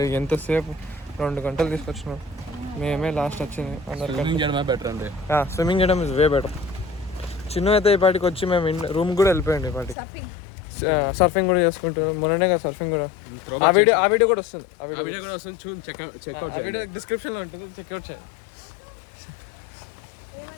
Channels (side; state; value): right; drops out; at 10.0 s